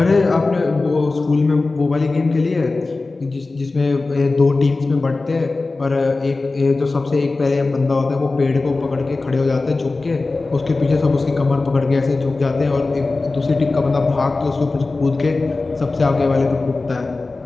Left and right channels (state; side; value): quieter; right; 3.5 dB